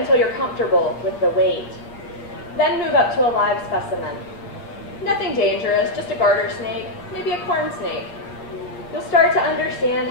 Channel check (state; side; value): late; right; 8.5 ms